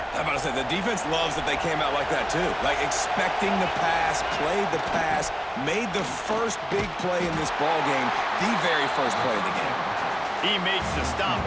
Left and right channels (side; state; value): both; identical; correlation 1.00